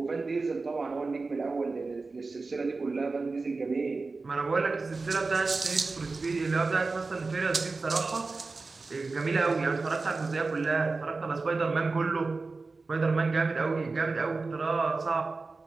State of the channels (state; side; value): quieter; left; 3.9 dB